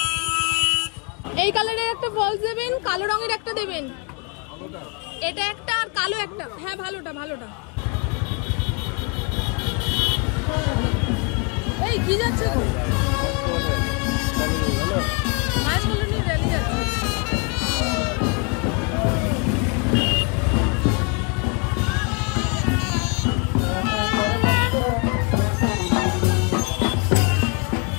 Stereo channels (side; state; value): right; quieter; 33.5 dB